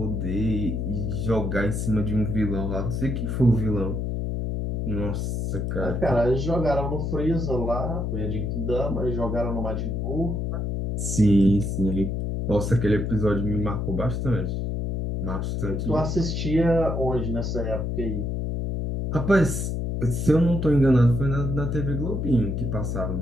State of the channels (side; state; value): left; noise; hum, 1 dB below the sound